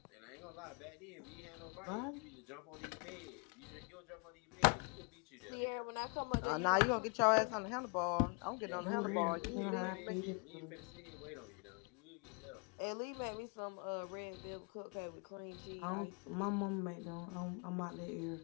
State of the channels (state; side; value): quieter; right; 37.4 dB